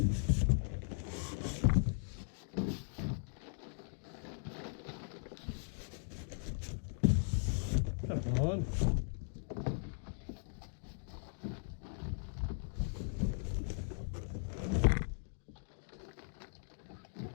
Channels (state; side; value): silent; right; digital silence